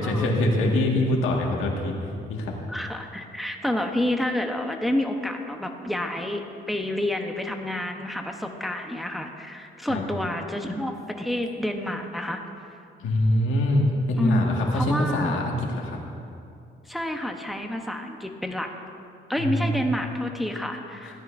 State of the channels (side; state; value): both; normal; correlation 0.76